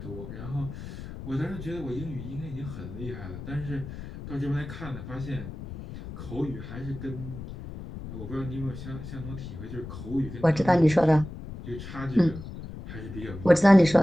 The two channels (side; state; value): left; noise; rumble, 11 dB below the sound